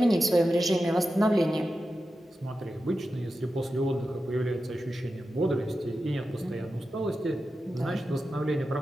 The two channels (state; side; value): normal; both; correlation 0.91